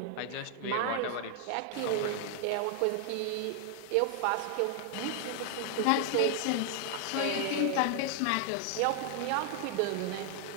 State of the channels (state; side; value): different; both; correlation 0.00